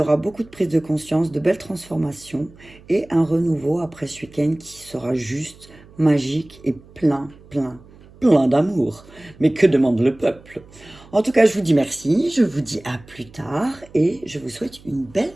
beaucoup de prise de conscience, de belles transformations et un renouveau après ce week-end qui sera juste magique et plein, plein, plein d'amour. Mais que demande le peuple? En tout cas, je vous dis merci, je vous dis à plus tard et je vous souhaite une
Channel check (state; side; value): noise; right; hum, 24 dB below the sound